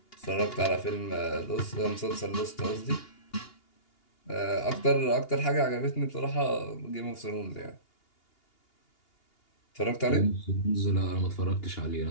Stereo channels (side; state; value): right; late; 2.8 ms